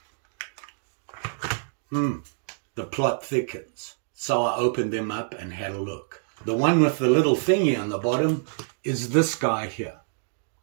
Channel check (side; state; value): left; silent; digital silence